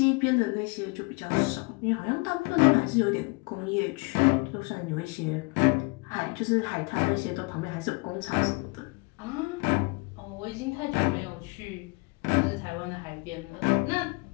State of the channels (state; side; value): quieter; right; 29.3 dB